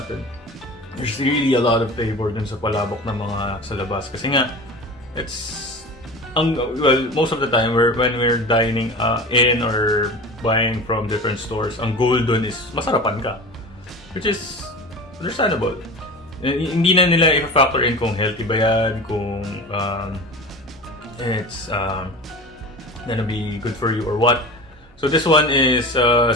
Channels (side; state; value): both; normal; correlation 0.33